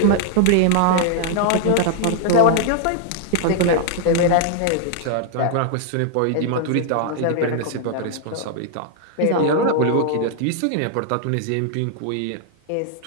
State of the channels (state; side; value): different; both; correlation 0.00